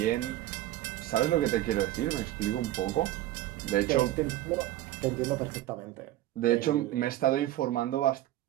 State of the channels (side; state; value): left; quieter; 14.8 dB